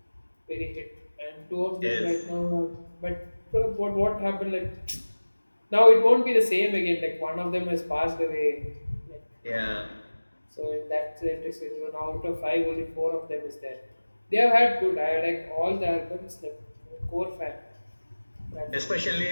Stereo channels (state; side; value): inverted; both; correlation -1.00